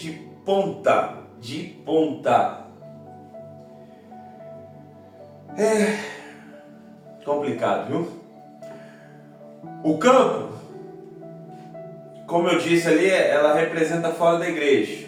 ponta. É complicado, viu? O campo, como eu disse ali, ela representa fora da igreja.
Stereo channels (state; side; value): identical; both; correlation 1.00